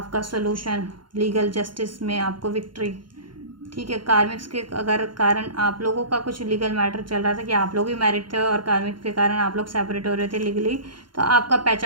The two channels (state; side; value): late; left; 0.72 ms